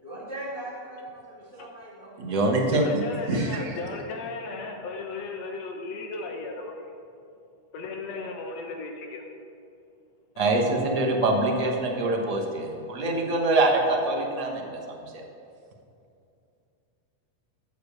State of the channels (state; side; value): late; right; 8.2 ms